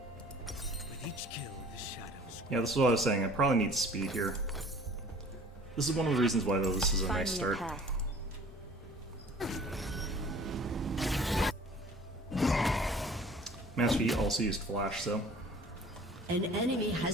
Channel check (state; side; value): normal; both; correlation 0.49